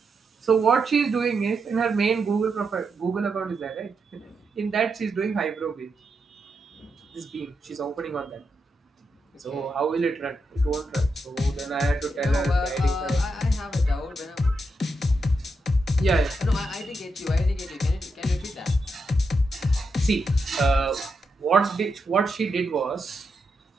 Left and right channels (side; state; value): both; normal; correlation 0.84